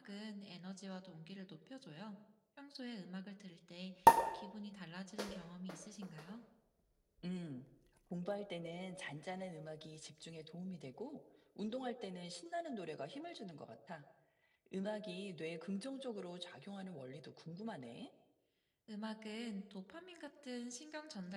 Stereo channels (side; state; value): both; identical; correlation 1.00